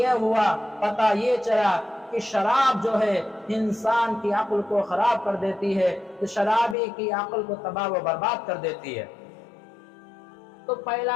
ہوا، پتہ یہ چلا کہ شراب جو ہے انسان کی عقل کو خراب کر دیتی ہے، تو شرابی کی عقل کو تباہ و برباد کر دیتی ہے۔ تو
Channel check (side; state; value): right; drops out; at 6.8 s